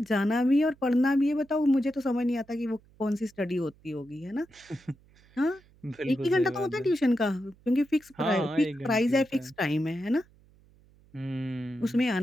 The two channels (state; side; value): noise; right; hum, 29 dB below the sound